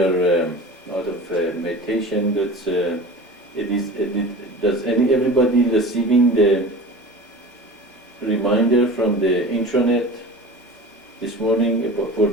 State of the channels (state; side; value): normal; both; correlation 0.36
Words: out of meditation, does everybody receiving the reminder from the intranet this morning for